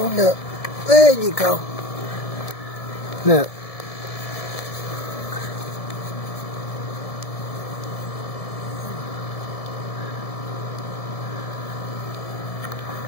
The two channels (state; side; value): late; right; 1.7 ms